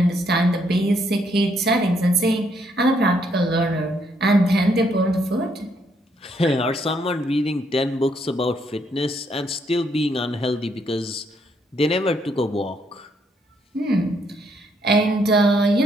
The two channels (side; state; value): both; normal; correlation 0.72